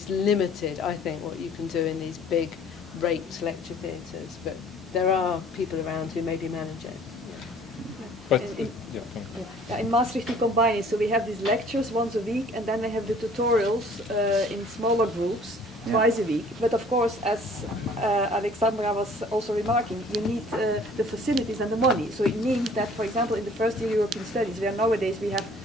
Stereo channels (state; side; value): normal; both; correlation 0.53